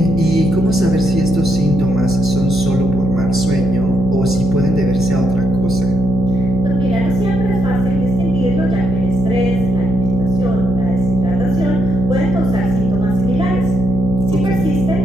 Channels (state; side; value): noise; left; hum, 8 dB below the sound